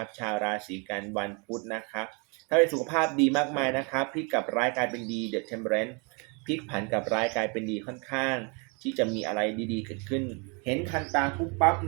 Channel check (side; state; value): left; quieter; 33.3 dB